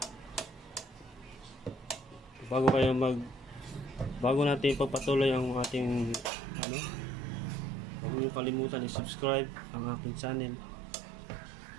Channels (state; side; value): drops out; left; at 6.3 s